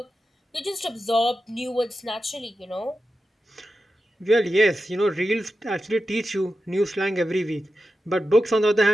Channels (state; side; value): normal; both; correlation 0.91